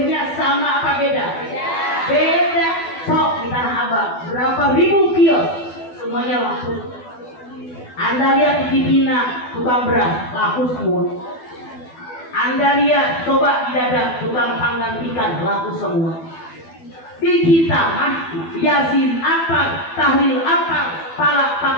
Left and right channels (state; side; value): late; right; 12 ms